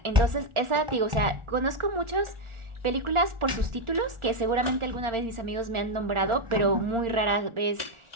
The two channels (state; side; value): late; left; 1.4 ms